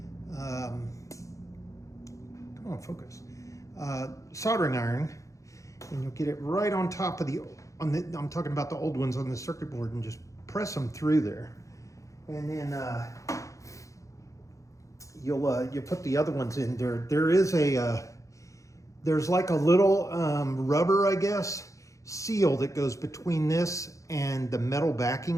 come on, focus, soldering iron, and you'll get it right on top of I'm talking about the old ones on the circuit board, and just press them through there. And then you'll put the other ones in there. There's like a little rubber, I guess, seal that goes between this and the metal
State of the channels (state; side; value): late; right; 0.15 ms